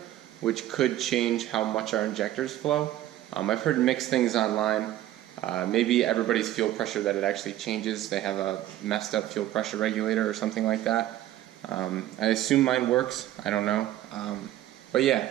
which could change how much our injectors flow. I've heard mixed things online. Maybe everybody's fuel pressure that it actually changes. They have a messed up fuel pressure regulator or something like that. I assume mine works. I don't know. But yeah,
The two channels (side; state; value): left; quieter; 13.8 dB